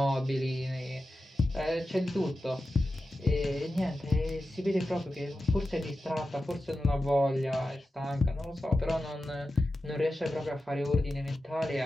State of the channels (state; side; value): normal; both; correlation 0.92